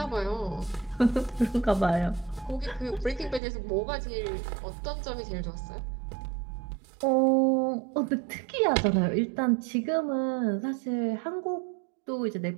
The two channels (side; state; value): left; drops out; at 3.4 s